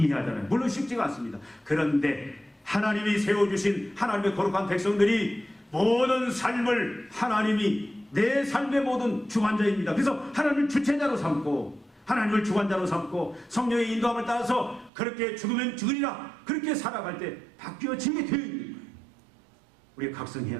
물론 쉽지가 않습니다. 그런데 하나님이 세워주신 하나님의 거룩한 백성들이 모든 삶을 하나님이 내 삶의 모든 주관자입니다. 그래서 하나님을 주체자로 삼고 하나님을 주관자로 삼고 성령의 인도함을 따라서 그렇게 죽으면 죽으리라 그렇게 살아갈 때 바뀌어지게 되어 있는 거예요. 우리가 각성해야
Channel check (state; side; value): drops out; left; at 14.9 s